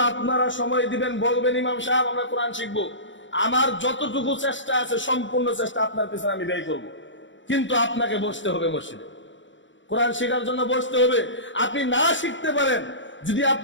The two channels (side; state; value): right; late; 0.55 ms